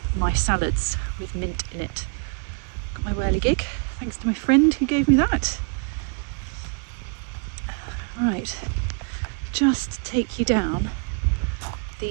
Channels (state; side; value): quieter; left; 38.1 dB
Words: my salads with mint in it. Got my whirligig, thanks to my friend who gave me that. Right, just take you down